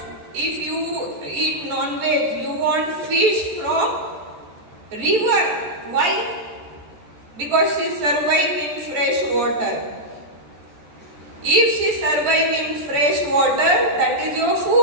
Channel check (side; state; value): left; late; 13 ms